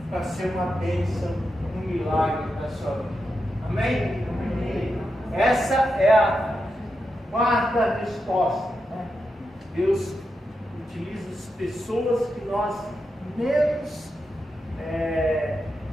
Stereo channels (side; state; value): both; normal; correlation 0.87